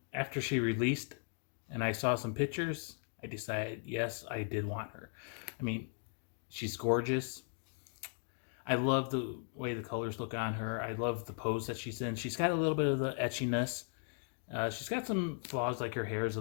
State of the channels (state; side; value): silent; right; 53 dB below the other